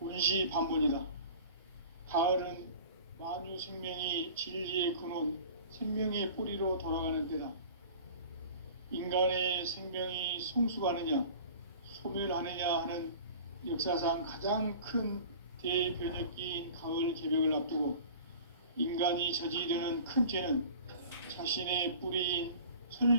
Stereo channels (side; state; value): both; inverted; correlation -0.42